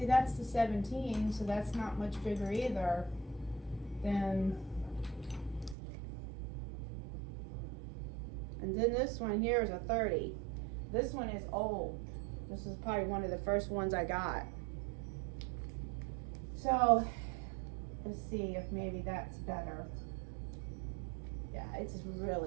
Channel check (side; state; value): left; drops out; at 5.8 s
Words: that's the 17, so that's not much bigger either than And then this one here is a 30. This one is old. This is probably one of the first ones I got. So let's see if maybe that's better. Yeah, it's